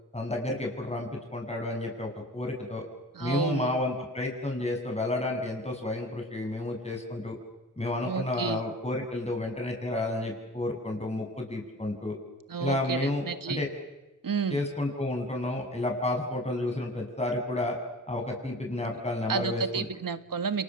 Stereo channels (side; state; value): both; normal; correlation 0.39